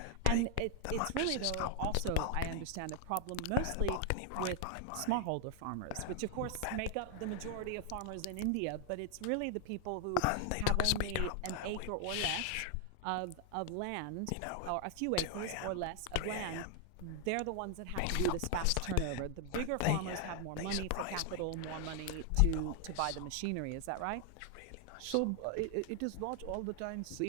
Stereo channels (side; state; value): both; different; correlation 0.00